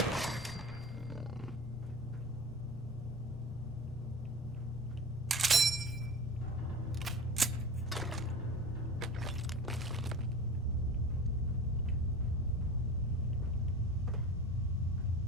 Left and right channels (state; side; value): normal; both; correlation 0.35